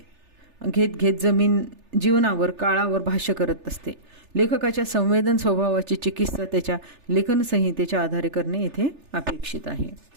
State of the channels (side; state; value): left; late; 3.4 ms